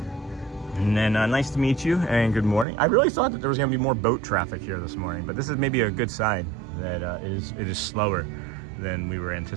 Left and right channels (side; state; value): left; drops out; at 2.7 s